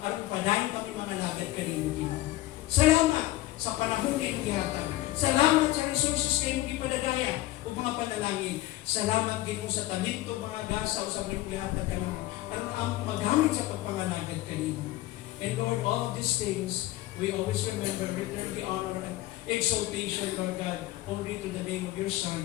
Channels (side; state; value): right; quieter; 16.4 dB